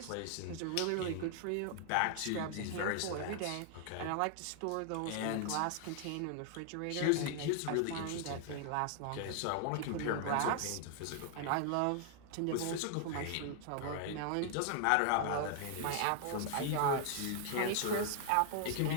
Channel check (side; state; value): both; different; correlation 0.00